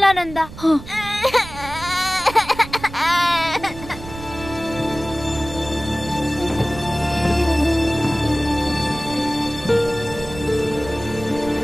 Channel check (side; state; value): right; noise; rumble, 14 dB below the sound